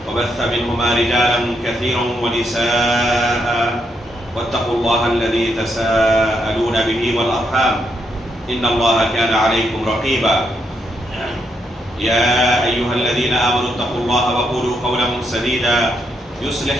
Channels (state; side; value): normal; both; correlation 0.79